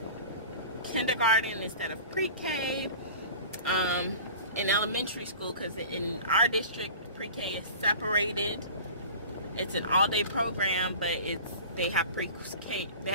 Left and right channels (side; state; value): both; inverted; correlation -0.39